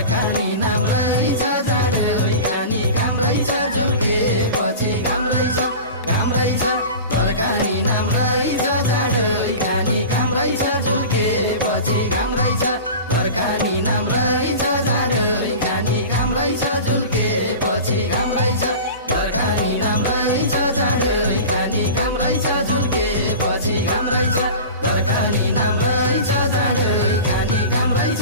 नाम रहेछ जाँडै खाने काम रहेछ झुल्केपछि काम रहेछ घरखानी नाम रहेछ जाँडै खाने काम रहेछ झुल्केपछि काम रहेछ घरखानी नाम रहेछ जाँडै खाने काम रहेछ झुल्केपछि काम रहेछ घरखानी नाम रहेछ जाँडै खाने काम रहेछ झुल्केपछि काम रहेछ घरखानी नाम रहेछ जाँडै खाने काम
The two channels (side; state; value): both; inverted; correlation -0.34